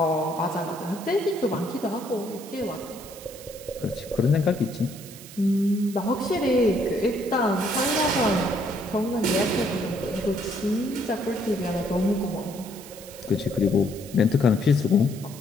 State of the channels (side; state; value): right; noise; hiss, 17 dB below the sound